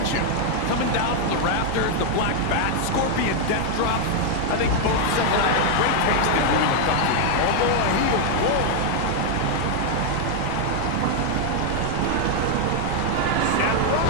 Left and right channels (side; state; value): both; different; correlation 0.00